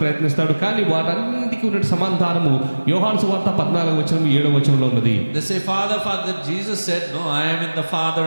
కానీ వాటన్నిటికీ ఉన్న సమాధానము యోహాను సువార్త 14వ వచనం 7వ వచనంలో ఉన్నది. They say, Father, Jesus said, no, I am in the Father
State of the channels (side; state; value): both; inverted; correlation -1.00